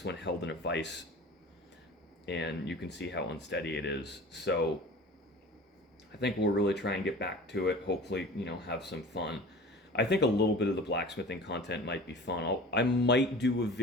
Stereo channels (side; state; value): both; normal; correlation 0.40